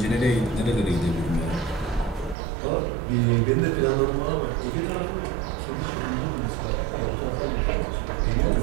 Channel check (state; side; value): drops out; left; at 2.4 s